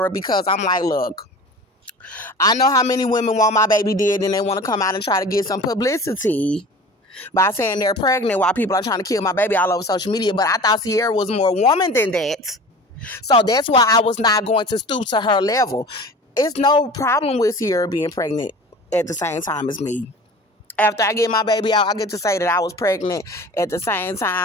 because I'm like, look, I know how many women want my baby dead and they want to come out and try to get some publicity by saying they're pregnant while people are trying to kill my baby all over social media. But I thought Ciara was more woman than that. So that's why I was not going to stoop to her level. It's no problem with Ciara being pregnant at the same time as me. After I get my baby out, I get to say that I was pregnant at the same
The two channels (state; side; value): normal; both; correlation 0.40